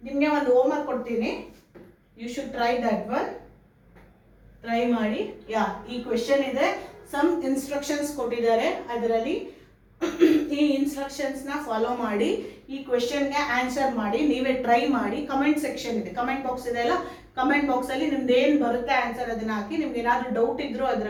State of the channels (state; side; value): identical; both; correlation 1.00